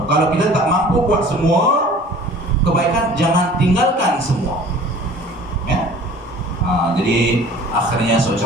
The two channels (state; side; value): normal; both; correlation 0.47